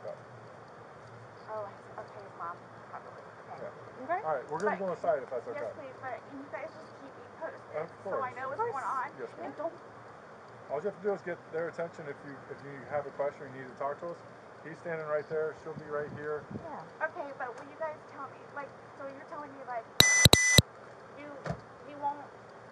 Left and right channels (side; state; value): both; identical; correlation 1.00